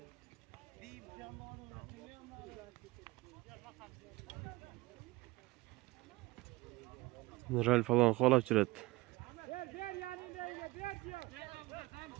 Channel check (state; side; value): quieter; left; 21.2 dB